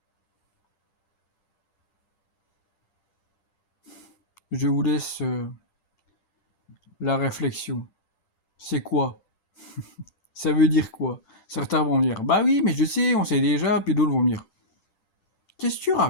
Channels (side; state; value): right; late; 10 ms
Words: Je vous laisse la réflexion. C'est quoi? Ça veut dire quoi? Certains vont me dire, bah oui, mais je sais, on sait déjà, puis d'autres vont me dire, qu'est-ce que tu